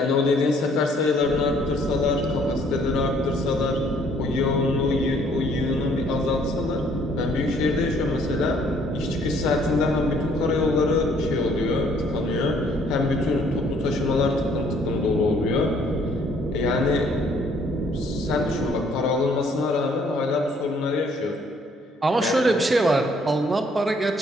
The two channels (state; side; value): normal; both; correlation 0.63